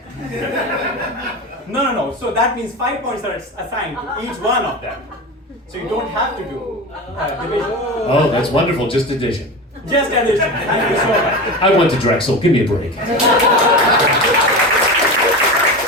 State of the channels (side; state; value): both; normal; correlation 0.26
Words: No. So that means 5 points are assigned to each one of them. So you don't have to do division. Oh, that's wonderful. Just addition. Just addition. Thank you so much. I went to Drexel. Give me a break.